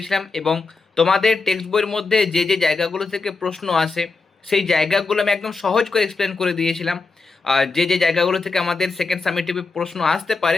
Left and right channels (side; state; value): right; quieter; 4.1 dB